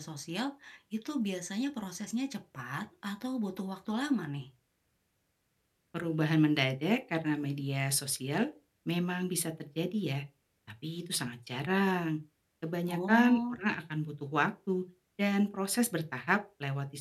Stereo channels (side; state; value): both; identical; correlation 1.00